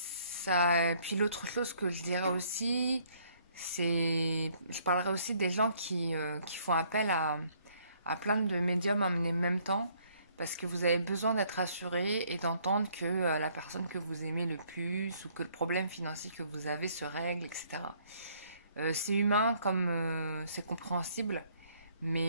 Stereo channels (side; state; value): both; inverted; correlation -0.64